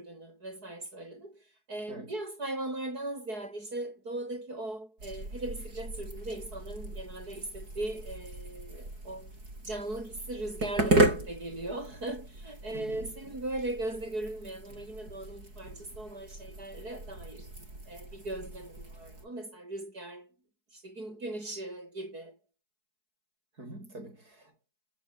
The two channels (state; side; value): late; left; 4.7 ms